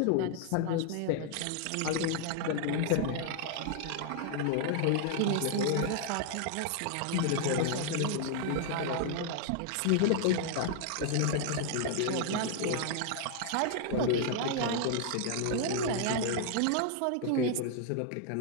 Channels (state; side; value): different; both; correlation 0.00